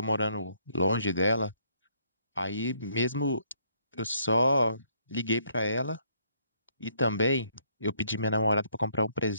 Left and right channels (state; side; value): inverted; both; correlation -0.69